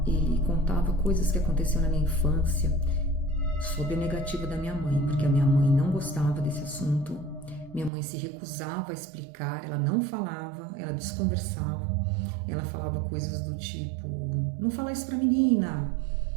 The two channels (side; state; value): left; drops out; at 7.9 s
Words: Ele contava coisas que aconteceram na minha infância, sob a negativa da minha mãe, porque a minha mãe não gostava desse assunto, minha mãe se recusava a explicar, ela não falava, ela desconversava, ela falava coisas do tipo, não fala isso pra menina,